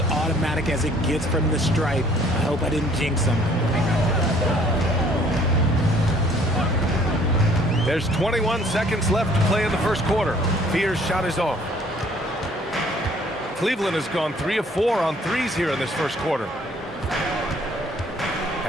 automatic as it gets from the stripe. I hope I didn't jinx him. There's 21 seconds left to play in the first quarter. Fears' shot is off. Cleveland has gone 3 of 4 on threes here in this first quarter.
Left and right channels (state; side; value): normal; both; correlation 0.59